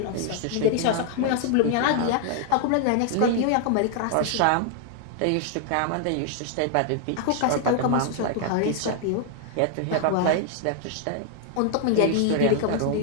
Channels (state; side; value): different; both; correlation 0.00